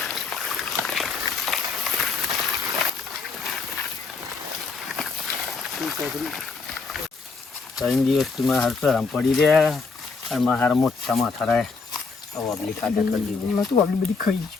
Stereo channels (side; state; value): right; quieter; 4.4 dB